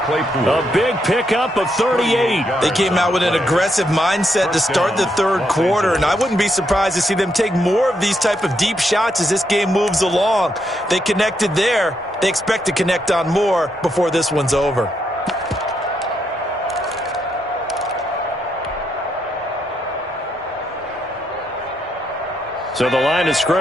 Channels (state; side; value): normal; both; correlation 0.79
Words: A big pickup of 38. They came out with an aggressive mindset to start the 3rd quarter, and I wouldn't be surprised to see them take more of these type of deep shots as this game moves along. They connected there. They expect to connect on more before this one's over. So the line of